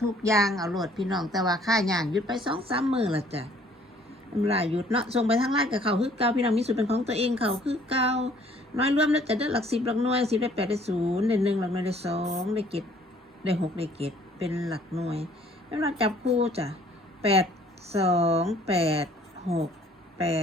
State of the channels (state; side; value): normal; both; correlation 0.58